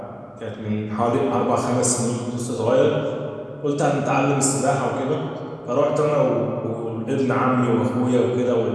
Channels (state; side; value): identical; both; correlation 1.00